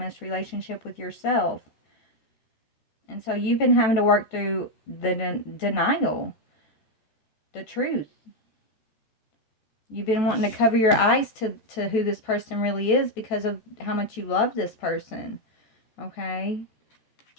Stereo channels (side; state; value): right; late; 13 ms